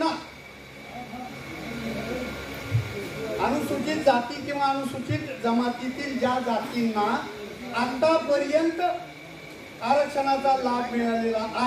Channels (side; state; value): both; identical; correlation 1.00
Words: अनुसूचित जाती किंवा अनुसूचित जमातीतील ज्या जातींना आतापर्यंत आरक्षणाचा लाभ मिळालेला